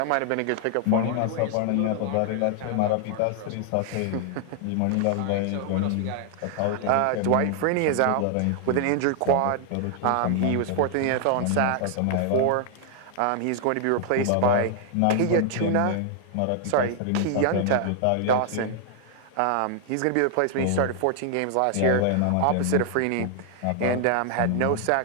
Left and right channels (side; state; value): both; different; correlation 0.00